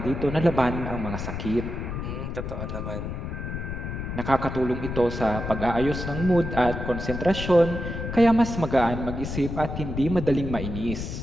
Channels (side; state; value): left; noise; rumble, 5 dB below the sound